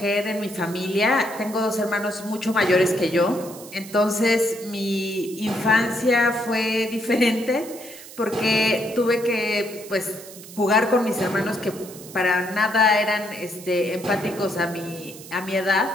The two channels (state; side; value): noise; right; hiss, 16 dB below the sound